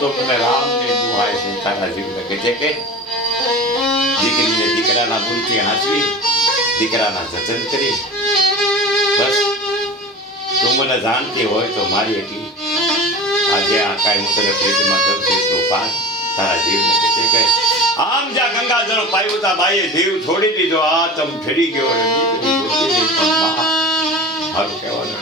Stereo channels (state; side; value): normal; both; correlation 0.35